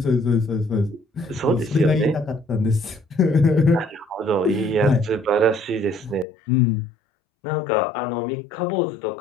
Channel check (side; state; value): right; drops out; at 6.2 s